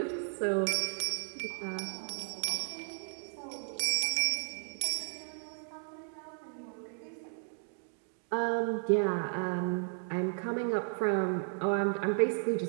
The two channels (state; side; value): silent; left; 55 dB below the other